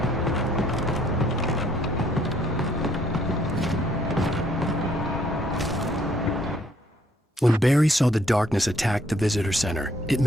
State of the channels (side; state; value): both; normal; correlation 0.65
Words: When Barry saw the darkness attack the visitor center, it